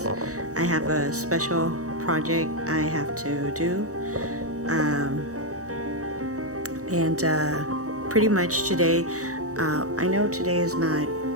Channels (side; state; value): left; late; 0.65 ms